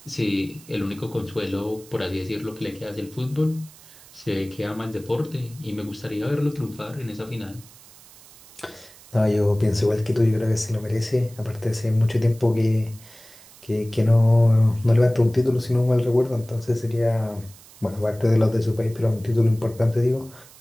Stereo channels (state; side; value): noise; right; hiss, 23 dB below the sound